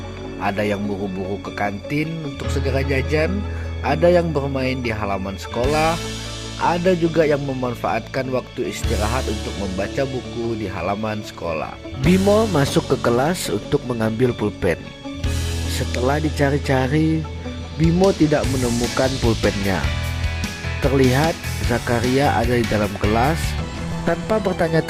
Ada yang buru-buru ke kantin untuk segera jajan, ada yang bermain di halaman sekolah, ada juga yang memanfaatkan waktu istirahat untuk membaca buku di halaman sekolah. Bimo masuk ke kelas untuk mengambil pulpen. Setelah dicari-cari, Bimo tidak menemukan pulpennya. Terlihat Zakaria ada di dalam kelas. Tanpa bertanya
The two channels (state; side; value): identical; both; correlation 1.00